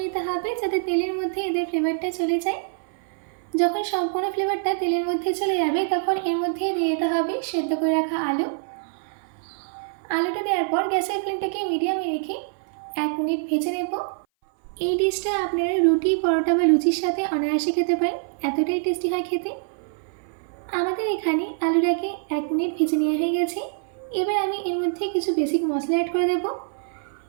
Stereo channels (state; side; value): silent; left; 58 dB below the other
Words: নিতে হবে যাতে তেলের মধ্যে এদের ফ্লেভারটা চলে যায়। যখন সম্পূর্ণ ফ্লেভারটা তেলের মধ্যে চলে যাবে তখন এর মধ্যে দিয়ে দিতে হবে সেদ্ধ করে রাখা আলু। আলুটা দেওয়ার পর গ্যাসের ফ্লেমটাকে মিডিয়ামে রেখে 1 মিনিট ভেজে নেব। এই ডিশটা আপনারা রুটি, পরোটা বা লুচির সাথে অনায়াসে খেতে পারেন, এতটাই টেস্টি হয় খেতে। আমাদের এখানে আলুটাকে 1 মিনিট ভেজে নেওয়া হয়ে গেছে। এবার আমি এর মধ্যে কিছু বেসিক মশলা অ্যাড করে দেব।